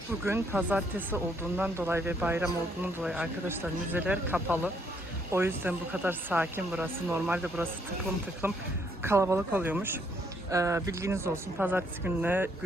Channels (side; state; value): both; normal; correlation 0.71